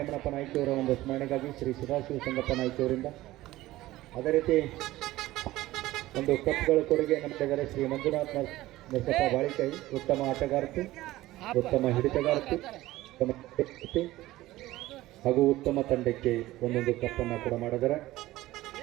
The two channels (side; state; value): left; quieter; 16.8 dB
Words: ನಾಯ್ಕಿಯವರ ಒಂದು ಸ್ಮರಣೆಗಾಗಿ ಶ್ರೀ ಸದಾಶಿವ ಸಂಗಪ್ಪ ನಾಯ್ಕಿಯವರಿಂದ. ಅದೇ ರೀತಿ ಒಂದು ಕಪ್ಗಳ ಕೊಡುಗೆ ನಮ್ಮಿದ್ದಾರೆ ಶ್ರೀ ಮಂಜುನಾಥ್ ನರಸಪ್ಪ ಬಾಳಿಕೈ, ಉತ್ತಮ ಆಟಗಾರ್ತಿ, ಉತ್ತಮ ಹಿಡಿತಗಾರ್ತಿ, ಉತ್ತಮ ವ್ಯಕ್ತಿ ಹಾಗೂ ಉತ್ತಮ ತಂಡಕ್ಕೆ ಒಂದೊಂದು ಕಪ್ಪನ್ನು ಕೂಡ ಮಾಡಿದ್ದಾರೆ.